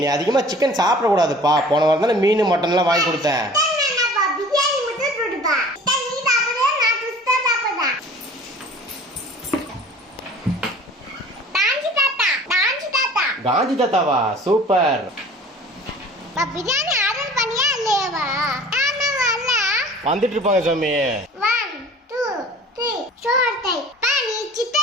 நீ அதிகமாக சிக்கன் சாப்பிடக்கூடாதுப்பா. போன வாரம் தானே மீன் மட்டன்லாம் வாங்கி கொடுத்தேன். காந்தி தாத்தாவா? சூப்பர். பிரியாணி ஆர்டர் பண்ணியா இல்லையாவா? வந்துட்டு இருப்பாங்க சாமி. 1 2 3 சோர்த்தை பானி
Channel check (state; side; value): normal; both; correlation 0.46